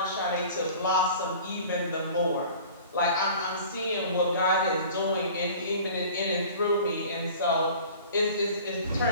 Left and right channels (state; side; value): inverted; both; correlation -0.44